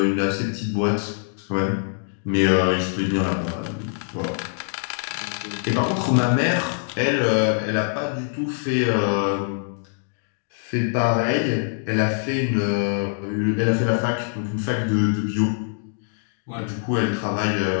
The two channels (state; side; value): silent; right; digital silence